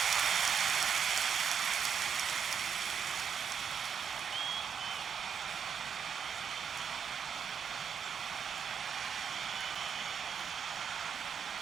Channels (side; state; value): left; quieter; 7.2 dB